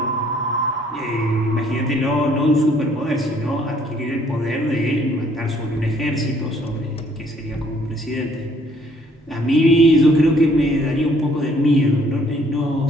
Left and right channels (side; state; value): both; normal; correlation 0.63